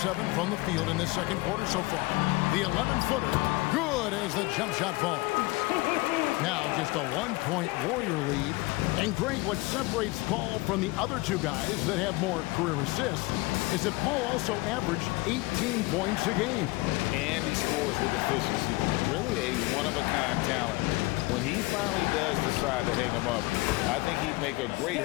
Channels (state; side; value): quieter; right; 22.9 dB